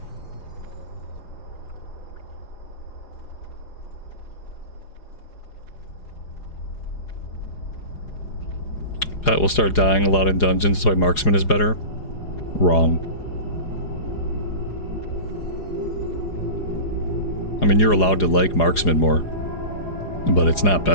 Pet will start dying a lot in dungeons, that's why marksman is better. Wrong. I mean, you're allowed to like marksman more, but it's not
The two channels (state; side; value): late; right; 4.9 ms